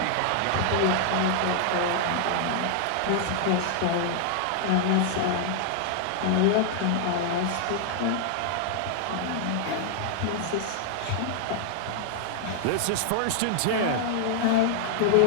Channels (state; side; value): different; both; correlation -0.01